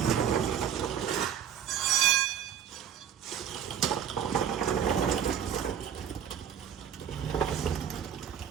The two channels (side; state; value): left; quieter; 8.9 dB